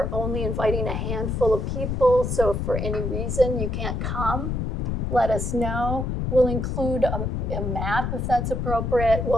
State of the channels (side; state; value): left; noise; rumble, 1 dB below the sound